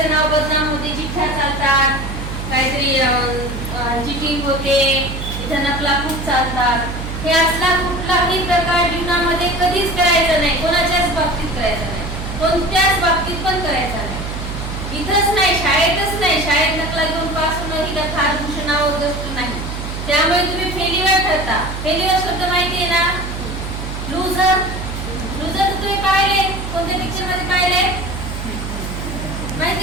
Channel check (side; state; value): right; noise; hum, 6 dB below the sound